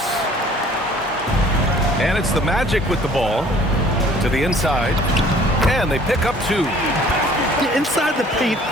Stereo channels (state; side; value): normal; both; correlation 0.53